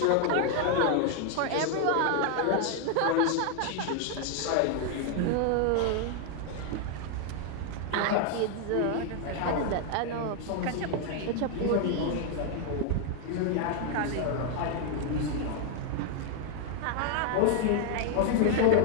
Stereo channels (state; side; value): different; both; correlation 0.00